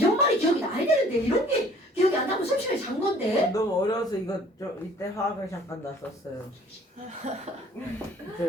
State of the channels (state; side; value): normal; both; correlation 0.54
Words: 말이 기억이 나야 되는데 이런 게 기억이 안 나면 수업 시간에 잔 건데. 너무 어려워서 이거 이때 화학을 잠깐 놨었어요.